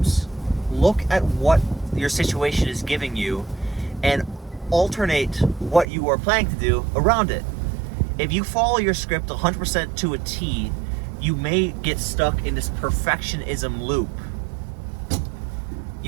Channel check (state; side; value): drops out; left; at 5.9 s